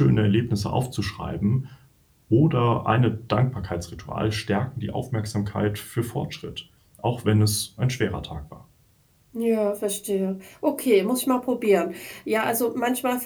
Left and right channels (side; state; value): both; identical; correlation 1.00